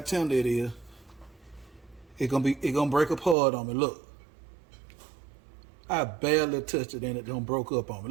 tender it is. It's gonna break apart on me. Look, I barely touched it and it don't broke up on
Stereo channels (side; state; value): left; drops out; at 3.4 s